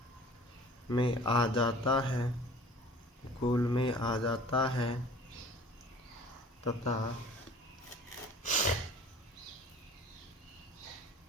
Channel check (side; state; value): both; normal; correlation 0.47